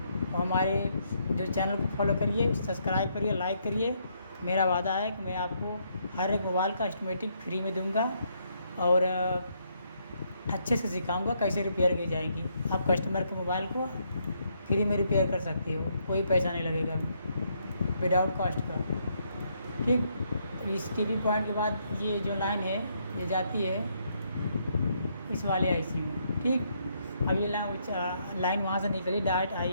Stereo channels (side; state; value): both; inverted; correlation -0.74